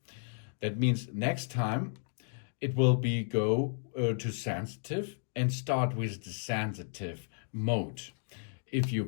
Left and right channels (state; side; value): silent; right; digital silence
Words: That means next time it will be go to sensitive and start with the sensitive mode. If you